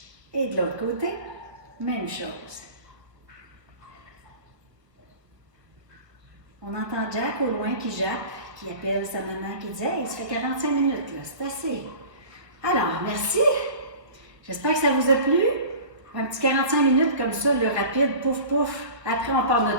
Et de l'autre côté, même chose. On entend Jack au loin qui jappe, qui appelle sa maman, qui dit « Hey, ça fait 45 minutes, là, c'est assez. » Alors, merci. J'espère que ça vous a plu. Un petit 45 minutes comme ça, le rapide, pouf, pouf. Après, on part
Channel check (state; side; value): late; left; 1.2 ms